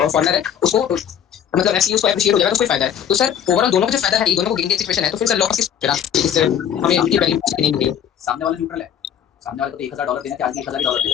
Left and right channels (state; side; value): quieter; right; 9.1 dB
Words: है उसको मतलब ऐसे उसको एप्रिशिएट हो जाएगा, तो उसको फायदा है। तो सर ओवरऑल दोनों को जो फायदा है, ये दोनों को गेन की सिचुएशन है, तो फिर सर लॉस किस हमें इनकी वैल्यू नहीं मिली है। सामने वाला न्यूट्रल है। सामने वाले को तो $1,000 देना चाहिए, आज भी $1,000